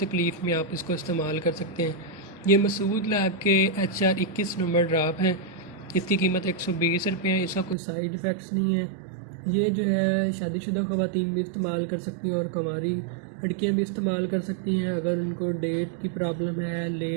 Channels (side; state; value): left; drops out; at 7.8 s